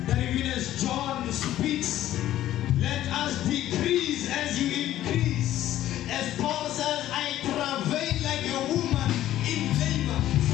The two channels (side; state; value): right; quieter; 13.2 dB